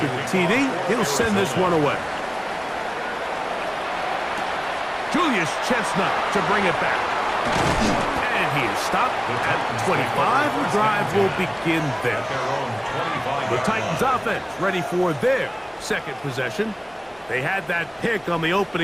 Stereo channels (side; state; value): both; identical; correlation 1.00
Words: the TD, he'll send this one away. Julius Chestnut to bring it back. And he is stopped at the 25. The drive will begin there. The Titans offense ready for their second possession. They had that pick on the